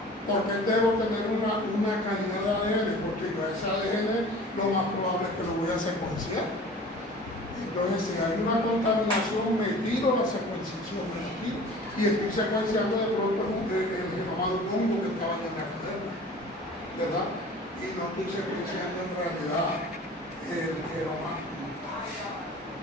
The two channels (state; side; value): normal; both; correlation 0.43